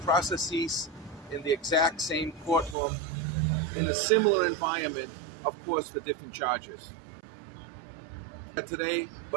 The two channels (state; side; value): drops out; left; at 2.8 s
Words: processes in the exact same courtroom in a similar environment, of course, for different charges. Today,